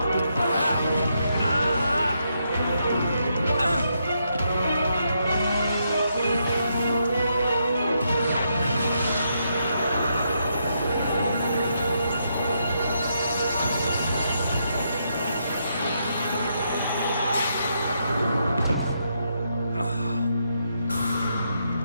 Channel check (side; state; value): both; inverted; correlation -0.79